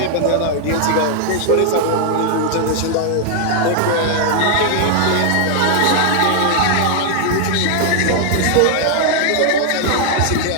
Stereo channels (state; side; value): different; both; correlation 0.00